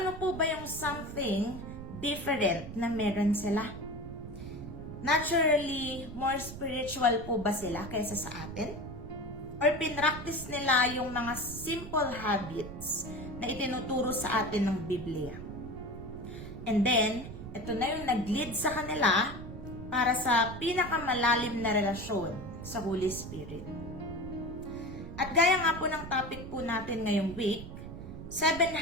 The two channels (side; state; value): right; noise; rumble, 11 dB below the sound